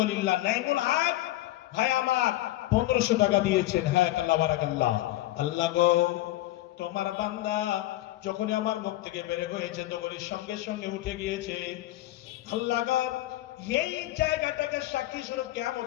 নাইমুল হক ভাই আমার 1500 টাকা দিয়েছেন। হ্যাঁ, আল্লাহ বারাকাল্লাহ। আল্লাহ গো, তোমার বান্দা যখনই আমার মুখ থেকে বের হয়েছে, তখনই সঙ্গে সঙ্গে উঠে গিয়েছে। আল্লাহ গো, এই জায়গাটাকে সাক্ষী স্বরূপ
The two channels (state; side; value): quieter; right; 16.2 dB